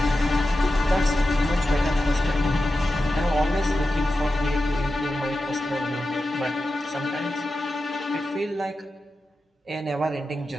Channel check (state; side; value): normal; both; correlation 0.92